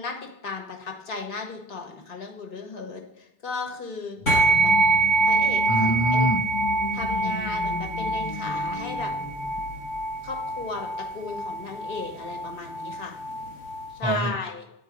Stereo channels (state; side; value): late; right; 3.7 ms